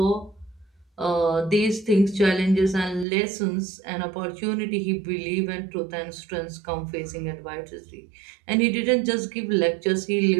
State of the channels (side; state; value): left; drops out; at 3.1 s